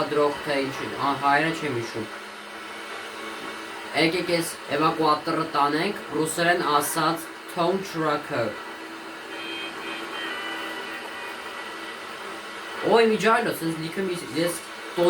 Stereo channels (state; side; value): identical; both; correlation 1.00